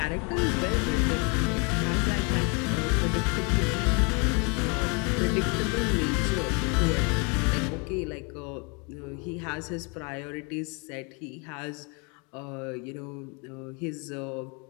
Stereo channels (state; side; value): quieter; right; 33.1 dB